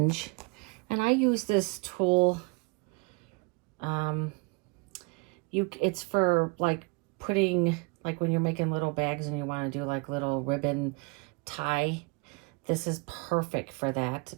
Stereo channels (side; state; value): left; quieter; 31.0 dB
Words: And I use this tool, it's for like putting, like when you're making little bags and you want to do like little ribbon tie. This is perfect for that